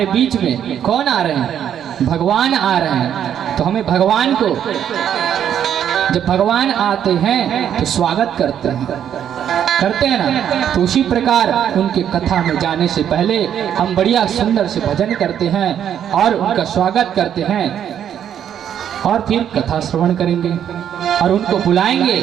बीच में। कौन आ रहे हैं? भगवान आ रहे हैं। तो हमें भगवान को, जब भगवान आते हैं तो स्वागत करते हैं ना। तो उसी प्रकार उनके कथा में जाने से पहले हम बढ़िया सुंदर से भजन करते हैं और उनका स्वागत करते हैं, और फिर कथा श्रवण करेंगे और उनको बुलाएंगे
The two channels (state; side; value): quieter; left; 9.5 dB